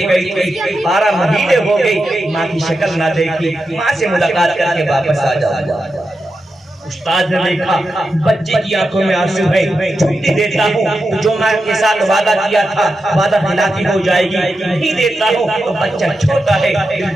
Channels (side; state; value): both; normal; correlation 0.89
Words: گئی تھی, 12 مہینے ہو گئی, ماں کی شکل نہ دیکھی, ماں سے ملاقات کر کے واپس آ جاؤ. استاد نے دیکھا بچے کی آنکھوں میں آنسو ہے, چھٹی دیتا ہوں جو ماں کے ساتھ وعدہ کیا تھا وعدہ خلافی ہو جائے گی, نہیں دیتا ہوں تو بچہ چھوٹا ہے